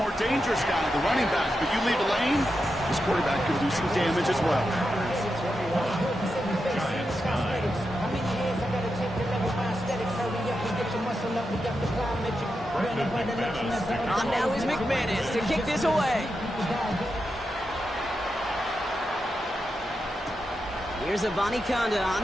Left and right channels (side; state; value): both; normal; correlation 0.87